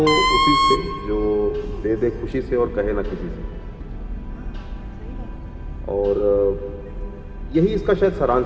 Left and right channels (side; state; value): both; identical; correlation 1.00